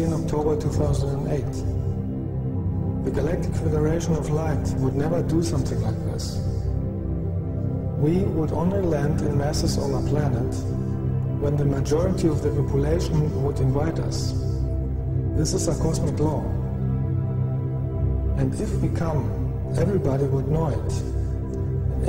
in October 2008. The Galactic Federation of Light would never do something like this. We would only land in masses on a planet when the majority of the population would invite us. This is a cosmic law. And if we come, everybody would know it. And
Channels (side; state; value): both; identical; correlation 1.00